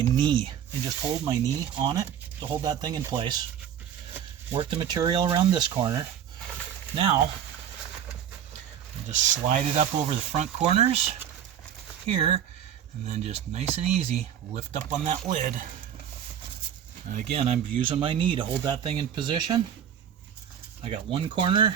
knee and just hold my knee on it to hold that thing in place. Work the material around this corner. Now, just slide it up over the front corners here, and then just nice and easy lift up on that lid. And again, I'm using my knee to hold that thing in position. I got one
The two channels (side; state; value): left; quieter; 9.3 dB